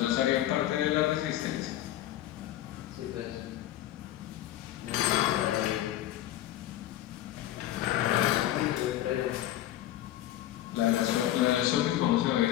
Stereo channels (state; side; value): quieter; right; 13.4 dB